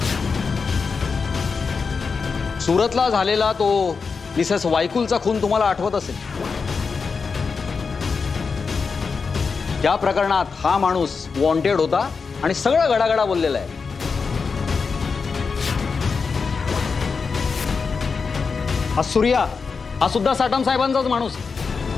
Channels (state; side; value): quieter; right; 5.1 dB